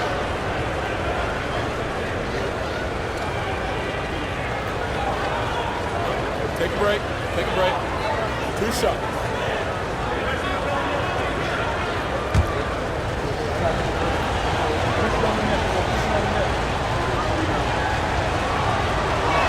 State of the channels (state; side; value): identical; both; correlation 1.00